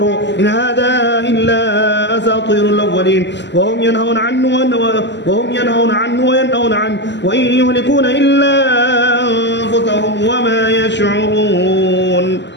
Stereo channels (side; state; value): right; late; 0.51 ms